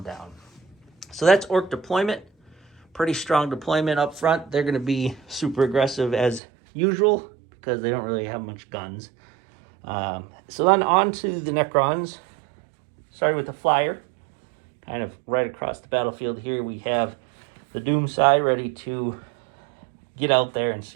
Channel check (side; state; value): left; drops out; at 6.4 s